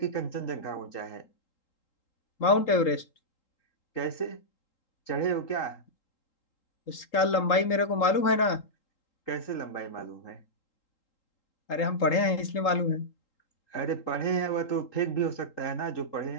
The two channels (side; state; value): right; late; 3.8 ms